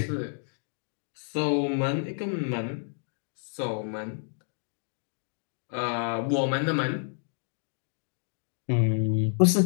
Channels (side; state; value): right; silent; digital silence